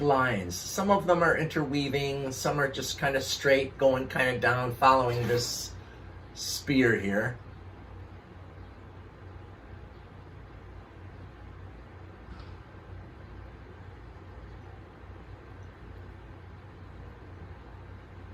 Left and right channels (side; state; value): both; identical; correlation 1.00